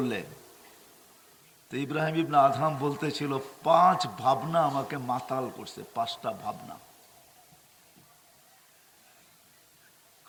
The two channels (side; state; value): both; identical; correlation 1.00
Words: তো ইব্রাহিম ইবনে আদহাম বলতেছিল, 5 ভাবনা আমাকে মাতাল করছে, 5টা ভাবনা।